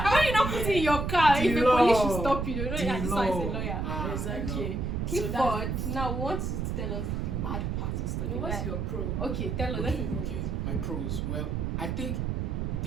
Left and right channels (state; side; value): noise; right; rumble, 1 dB below the sound